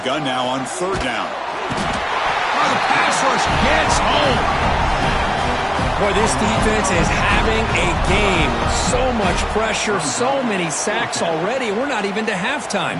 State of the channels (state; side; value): identical; both; correlation 1.00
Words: now on third down. Oh, the pass rush gets home. Boy, this defense is having a game. So much pressure, so many sacks already. We're not even to